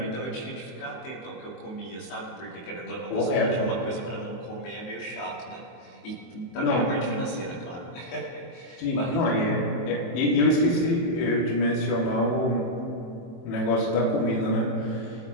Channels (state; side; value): late; right; 23 ms